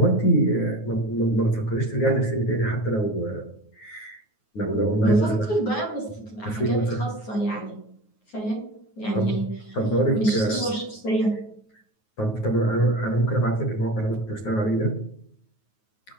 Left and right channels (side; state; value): right; late; 9.4 ms